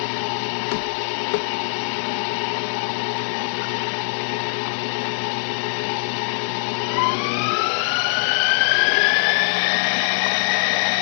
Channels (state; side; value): silent; right; digital silence